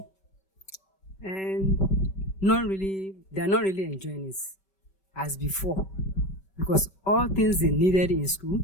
And not really, they are not really enjoying it as before, because all things they needed in school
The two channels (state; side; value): late; right; 5.2 ms